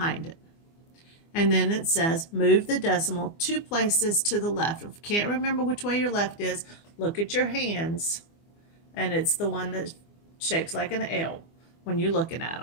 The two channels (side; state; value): right; late; 24 ms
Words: it. And then it says move the decimal 2 places to the left. If you can't remember which way your left is, look at your hands, and it's the one that shapes like an L when you're looking at